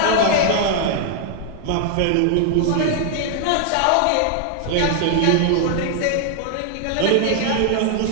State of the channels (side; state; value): both; different; correlation 0.00